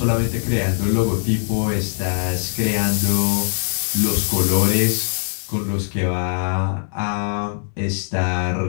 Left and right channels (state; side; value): silent; right; digital silence